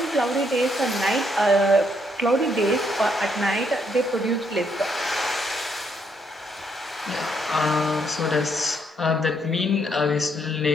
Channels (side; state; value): both; normal; correlation 0.73